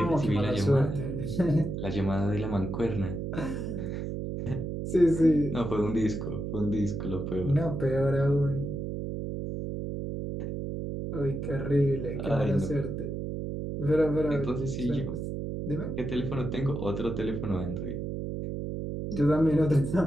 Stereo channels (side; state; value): right; noise; hum, 4 dB below the sound